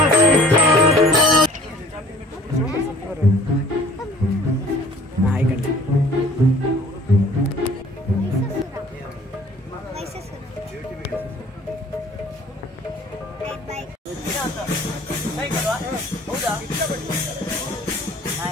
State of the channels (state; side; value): normal; both; correlation 0.52